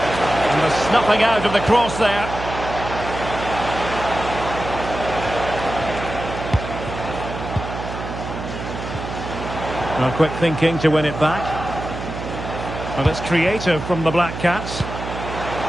the snuffing out of the cross there. Well, quick thinking to win it back. Well, it's creative from the Black Cats.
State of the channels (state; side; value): noise; right; hum, 8 dB below the sound